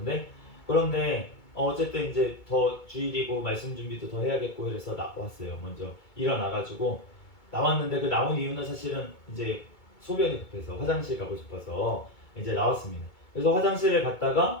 그런데 어쨌든 이제 더 주일이고 말씀 준비도 더 해야겠고 그래서 나왔어요. 먼저 일어나가지고 나왔는데 그 나온 이유는 사실은 이제 소변이 급해서 화장실 가고 싶어서 이제 나왔습니다. 그래서 화장실에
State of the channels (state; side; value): late; right; 2.2 ms